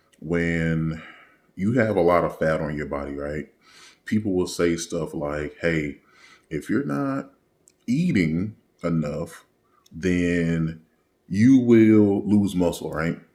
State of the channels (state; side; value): identical; both; correlation 1.00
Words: when you have a lot of fat on your body, right? People will say stuff like, hey, if you're not eating enough, then you will lose muscle, right?